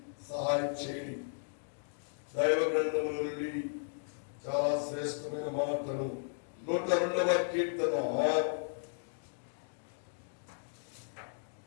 సహాయం చేయండి. దైవ గ్రంథముల నుండి చాలా శ్రేష్టమైన మాటలు. 102వ కీర్తన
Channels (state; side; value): silent; right; digital silence